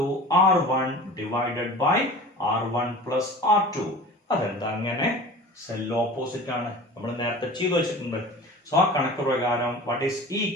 R1 divided by R1 plus R2. അതെന്താ അങ്ങനെ? സെൽ ഓപ്പോസിറ്റ് ആണ്, നമ്മൾ നേരത്തെ ചെയ്തു വെച്ചിട്ടുണ്ട്. സോ ആ കണക്ക് പ്രകാരം വാട്ട് ഈസ് E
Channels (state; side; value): normal; both; correlation 0.38